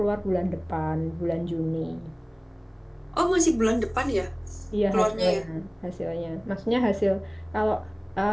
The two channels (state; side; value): identical; both; correlation 1.00